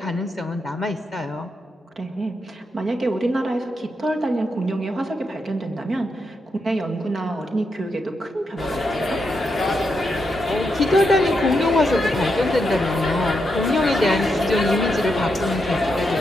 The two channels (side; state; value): both; normal; correlation 0.83